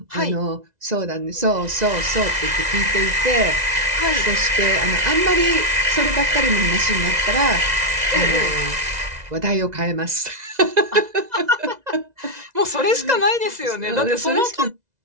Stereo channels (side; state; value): left; late; 2.0 ms